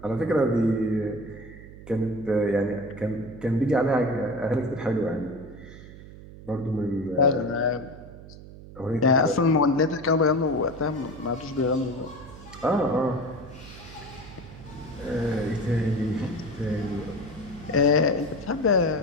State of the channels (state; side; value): noise; right; hum, 16 dB below the sound